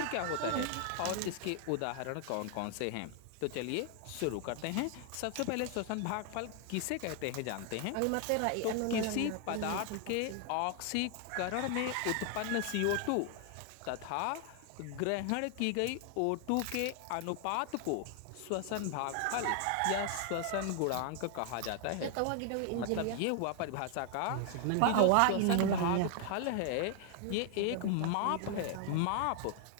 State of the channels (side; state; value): both; different; correlation 0.00